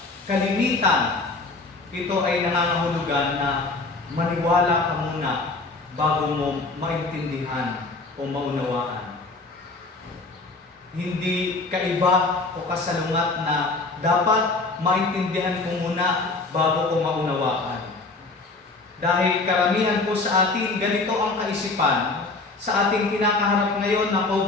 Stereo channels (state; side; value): quieter; right; 3.5 dB